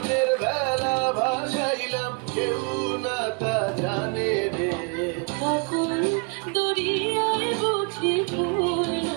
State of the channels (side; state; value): left; quieter; 35.5 dB